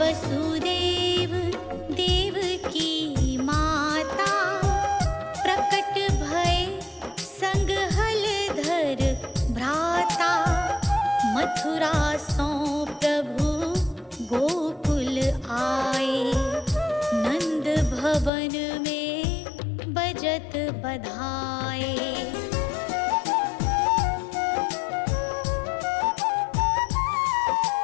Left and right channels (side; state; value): right; drops out; at 18.3 s